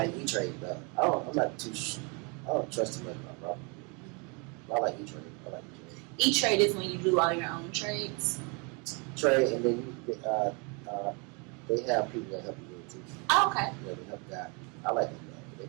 E-Trade, but I'm not too. I don't trust too much about Robinhood. I like E-Trade. E-Trade is when you do all your own trades. Trade, and then they have people that help you with it too. Oh, okay. Yeah, they help guide. I like them.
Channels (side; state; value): left; quieter; 32.3 dB